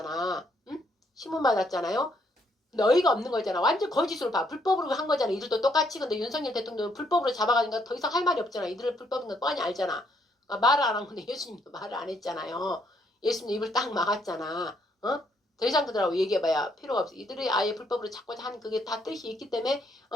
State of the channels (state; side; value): normal; both; correlation 0.71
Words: 응? 신문 받았잖아요. 너희가 없는 거잖아. 완전 거짓으로 봐. 불법으로 한 거잖아. 이들도 똑같이. 근데 윤석열 대통령은 불법으로 잡아가니까 더 이상 할 말이 없잖아. 이들을 불법인 건 뻔히 알잖아. 말을 안 한 건데 예수님도 말을 안 했잖아요. 예수님 입을 딱 막았잖아. 더 이상 그들하고 얘기해봐야 필요가 없어. 이들이 아예 불법으로 잡고자 하는 그게 다 뜻이 있기 때문에